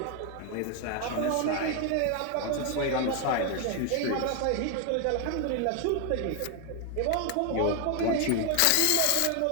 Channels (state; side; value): different; both; correlation 0.00